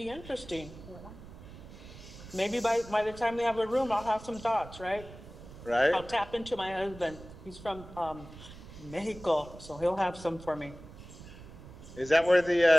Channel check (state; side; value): noise; right; rumble, 16 dB below the sound